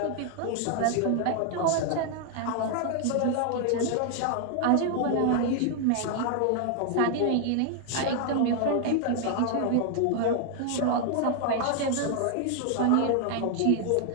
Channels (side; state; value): both; different; correlation 0.00